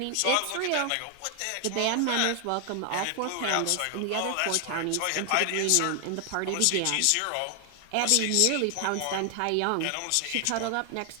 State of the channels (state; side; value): different; both; correlation 0.00